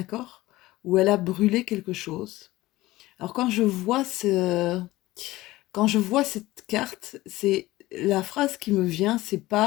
où elle a brûlé quelque chose. Alors quand je vois cette carte, c'est la phrase qui me vient, c'est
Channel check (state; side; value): quieter; right; 17.9 dB